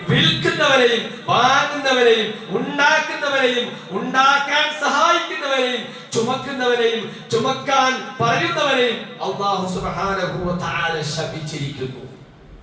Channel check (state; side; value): identical; both; correlation 1.00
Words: വിൽക്കുന്നവരെയും വാങ്ങുന്നവരെയും ഉണ്ടാക്കുന്നവരെയും ഉണ്ടാക്കാൻ സഹായിക്കുന്നവരെയും ചുമക്കുന്നവരെയും ചുമക്കാൻ പറയുന്നവരെയും അല്ലാഹു സുബ്ഹാനഹു വ തആല ശപിച്ചിരിക്കുന്നു.